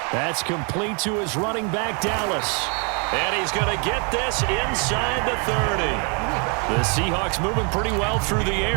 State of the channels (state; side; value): quieter; left; 36.3 dB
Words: That's complete to his running back, Dallas. And he's going to get this inside the 30. The Seahawks moving pretty well through the